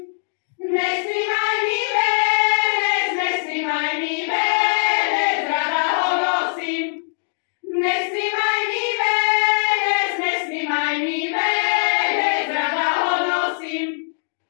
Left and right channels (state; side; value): silent; right; digital silence